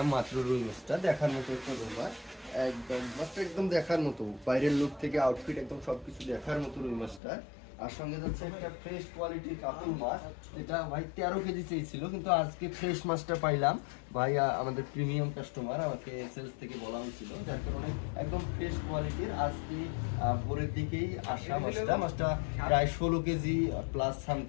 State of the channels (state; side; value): drops out; right; at 7.2 s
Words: মাত্র রুই মাছটা। দেখার মতো একটা রুই মাছ, একদম মাছটা একদম দেখার মতো, বাইরের লুক থেকে আউটফিট একদম সবকিছু দেখার মতো রুই মাছটা। আর সঙ্গে যাচ্ছে একটা ফ্রেশ কোয়ালিটির কাতল মাছ, এটা ভাই 13 কেজি চেয়েছিল, কিন্তু আজকে ফ্রেশ মাছটা পাইলাম। ভাই আমাদের প্রিমিয়াম কাস্টমার, আমাকে সেলস থেকে বলা হয়েছিল, যার কারণে একদম ফ্রেশ কোয়ালিটির আজকে ভোরের দিকেই আসা মাছটা প্রায় 16 কেজি প্লাস